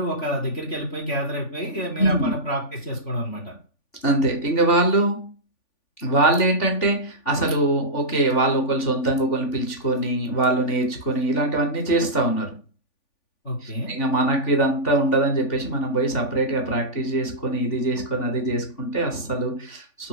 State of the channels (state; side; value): late; right; 3.5 ms